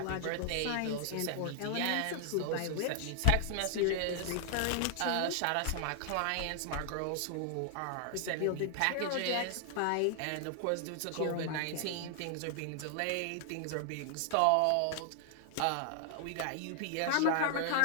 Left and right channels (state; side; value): different; both; correlation 0.00